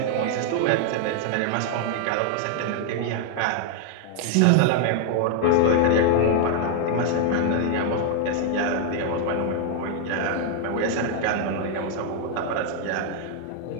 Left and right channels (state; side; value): different; both; correlation 0.00